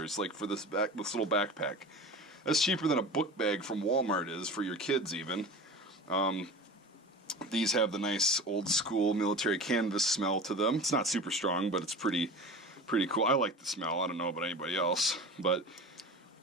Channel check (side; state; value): both; normal; correlation 0.34